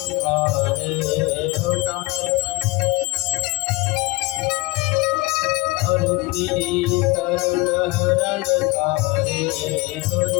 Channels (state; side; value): quieter; right; 24.3 dB